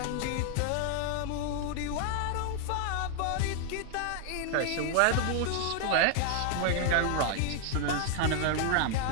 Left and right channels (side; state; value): both; different; correlation 0.00